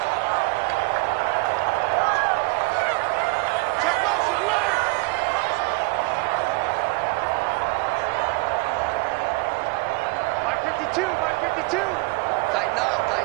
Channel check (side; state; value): left; quieter; 25.6 dB